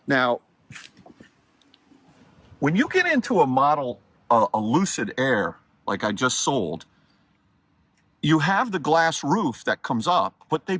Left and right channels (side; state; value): both; identical; correlation 1.00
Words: Now, when you get into a Lucid Air, like I just sold, you have the glass roof that comes up, but they